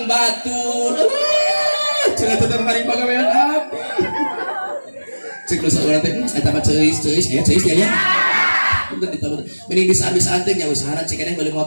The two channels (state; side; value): inverted; both; correlation -1.00